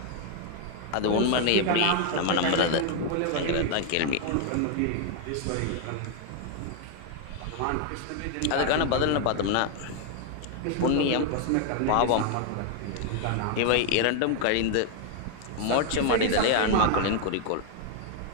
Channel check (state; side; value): different; both; correlation 0.00